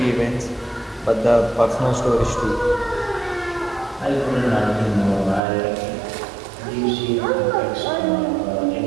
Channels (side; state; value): left; drops out; at 5.4 s